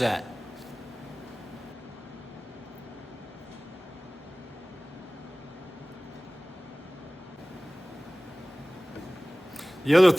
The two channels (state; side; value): normal; both; correlation 0.98